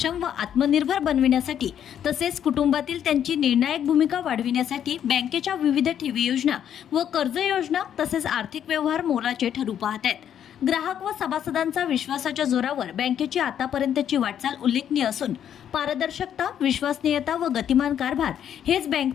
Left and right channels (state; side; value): quieter; right; 9.5 dB